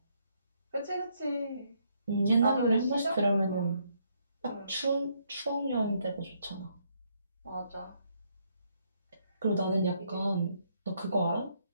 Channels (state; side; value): inverted; both; correlation -0.73